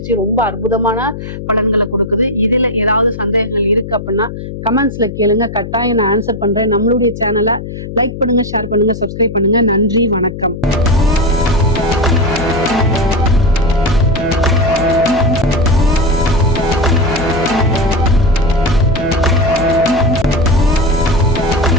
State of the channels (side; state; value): left; noise; hum, 9 dB below the sound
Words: ரொம்ப அற்புதமான பலன்களை கொடுக்குது. இதுல ஏதாவது சந்தேகங்கள் இருக்கு அப்படின்னா கமெண்ட்ஸ்ல கேளுங்க, கட்டாயம் நான் ஆன்சர் பண்றேன். நம்மளுடைய சேனலை லைக் பண்ணுங்க, ஷேர் பண்ணுங்க, சப்ஸ்கிரைப் பண்ணுங்க. நன்றி, வணக்கம்.